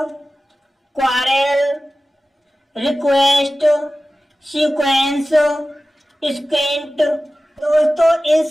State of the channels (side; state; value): both; normal; correlation 0.96